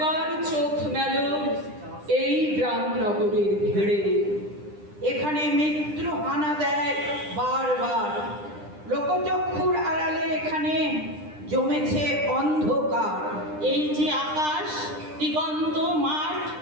চোখ মেলো এই গ্রাম নগরের ভিড়ে। এখানে মৃত্যু হানা দেয় বারবার, লোকচক্ষুর আড়ালে এখানে জমেছে অন্ধকার। এই যে আকাশ, দিগন্ত মাঠ,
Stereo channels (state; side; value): late; left; 9.9 ms